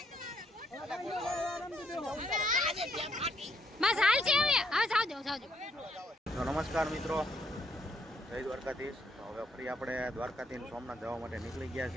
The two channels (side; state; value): both; normal; correlation 0.73